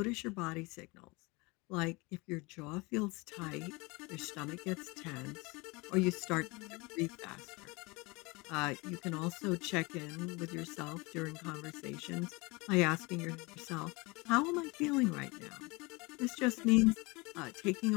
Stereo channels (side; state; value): right; quieter; 25.6 dB